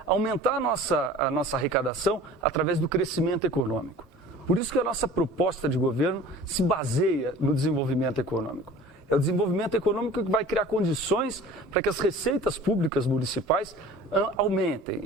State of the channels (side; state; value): both; normal; correlation 0.43